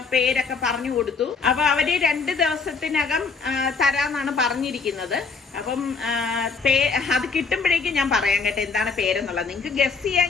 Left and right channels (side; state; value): right; quieter; 4.8 dB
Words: പേരൊക്കെ പറഞ്ഞു കൊടുത്തു. അപ്പൊ അവര് 2 ദിവസത്തിനകം തരാന്നാണ് പറഞ്ഞിരിക്കുന്നത്. അപ്പം അത് കിട്ടുമ്പോഴേക്കും ഞാൻ പറയാം കേട്ടോ എന്താണ് പേരെന്നുള്ളത്. നിങ്ങൾക്ക് ഗസ്